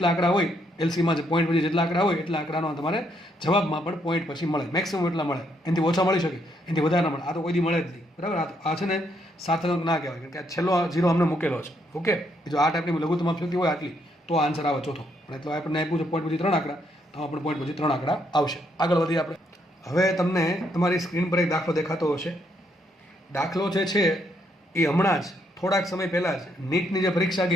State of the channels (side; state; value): both; normal; correlation 0.74